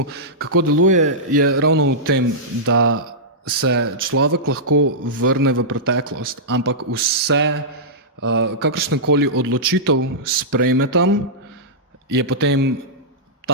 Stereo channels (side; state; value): both; normal; correlation -0.13